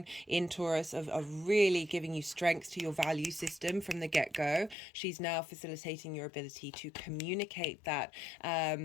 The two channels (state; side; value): drops out; right; at 4.8 s